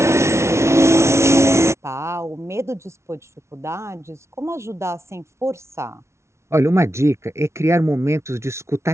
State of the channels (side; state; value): left; late; 0.13 ms